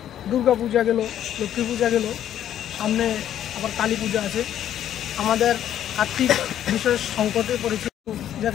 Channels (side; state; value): right; quieter; 10.8 dB